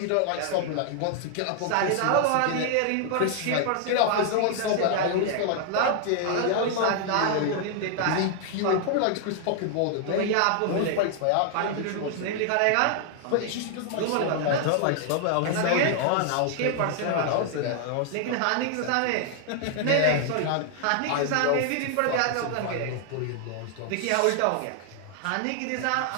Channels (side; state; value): both; different; correlation 0.00